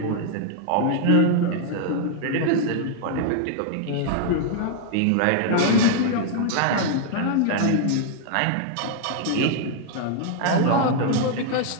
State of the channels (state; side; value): different; both; correlation 0.00